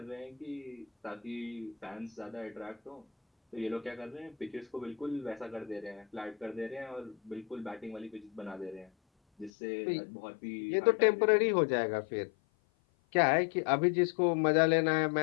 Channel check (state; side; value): drops out; right; at 9.5 s